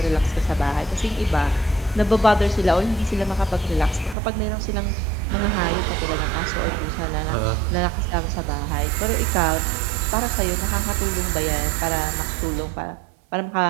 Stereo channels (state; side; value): drops out; left; at 4.2 s